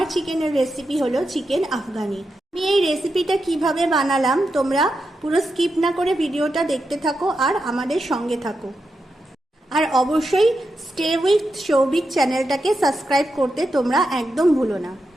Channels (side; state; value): both; normal; correlation 0.87